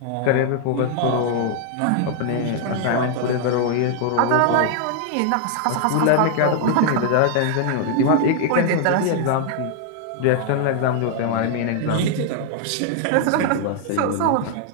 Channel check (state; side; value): different; both; correlation 0.00